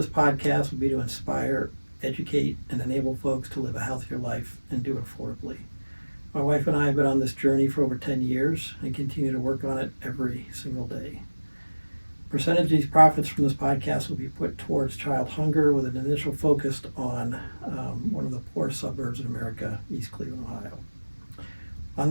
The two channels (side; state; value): both; inverted; correlation -1.00